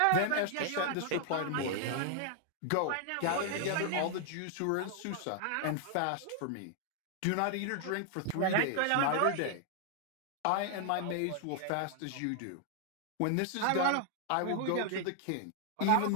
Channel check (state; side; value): different; both; correlation 0.00